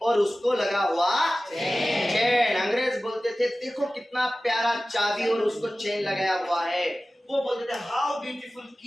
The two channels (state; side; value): normal; both; correlation 0.96